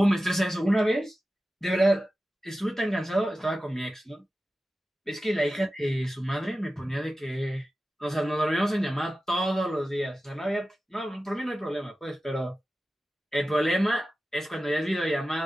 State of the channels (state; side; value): normal; both; correlation 0.94